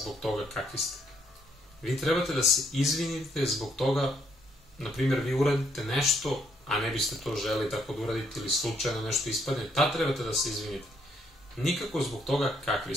toga kakvi ste. Vi trebate da se izvinite zbog toga, na primjer, vi uradite nešto, a ne biste to želi tako da uradite ili slučajno nešto ispadne, tad trebate da se izvinite. Nikako zbog toga kakvi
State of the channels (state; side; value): normal; both; correlation 0.71